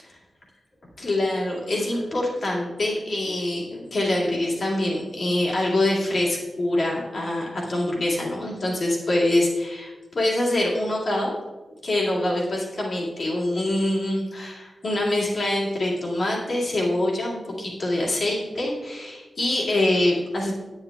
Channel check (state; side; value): normal; both; correlation 0.93